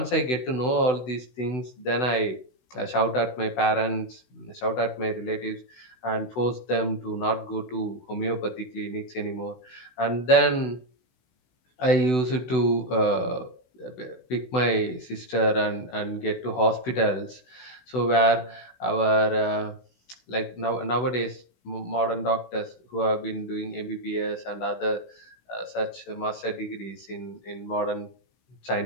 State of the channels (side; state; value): right; late; 16 ms